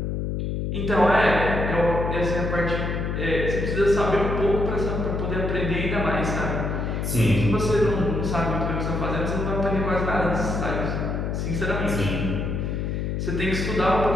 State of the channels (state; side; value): noise; left; hum, 2 dB below the sound